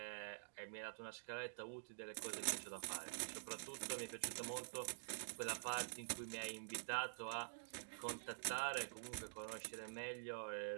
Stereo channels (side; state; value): left; silent; digital silence